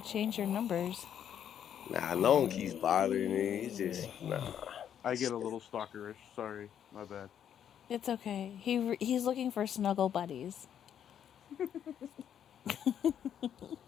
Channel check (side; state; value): right; quieter; 9.3 dB